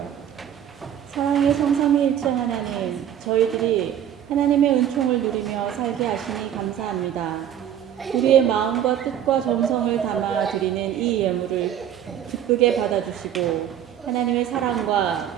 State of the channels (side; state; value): left; quieter; 10.1 dB